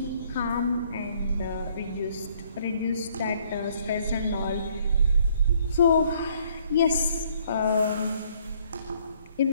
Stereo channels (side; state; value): both; inverted; correlation -0.64